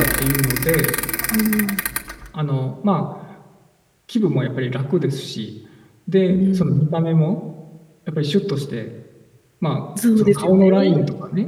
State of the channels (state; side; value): identical; both; correlation 1.00